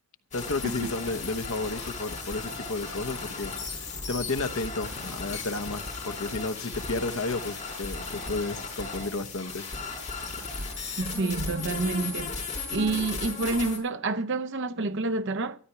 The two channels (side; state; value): both; normal; correlation 0.21